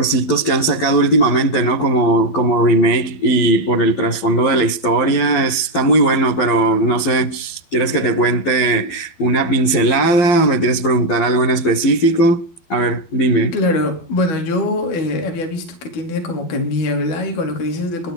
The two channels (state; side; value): late; right; 11 ms